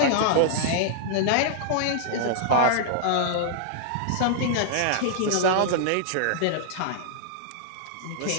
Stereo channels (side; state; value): both; different; correlation -0.01